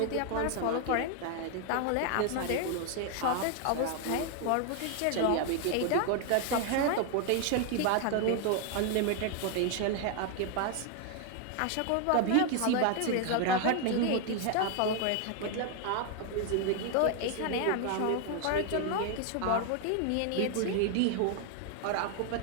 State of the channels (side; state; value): both; different; correlation 0.01